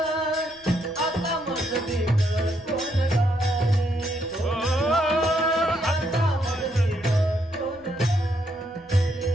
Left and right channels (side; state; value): right; noise; rumble, 28 dB below the sound